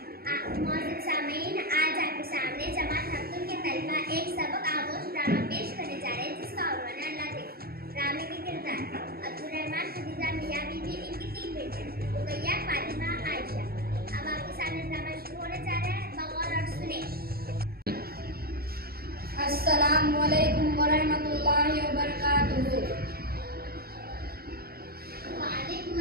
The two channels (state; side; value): late; left; 0.44 ms